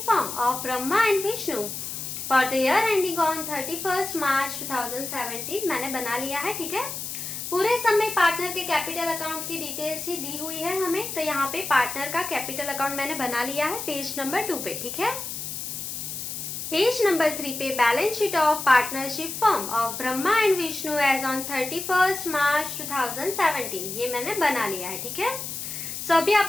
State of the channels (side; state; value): left; noise; hiss, 6 dB below the sound